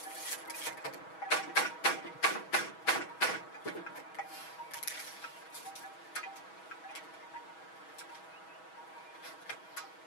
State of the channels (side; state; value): right; late; 6.2 ms